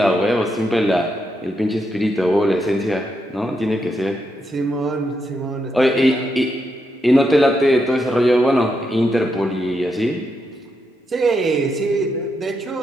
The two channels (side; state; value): both; normal; correlation 0.82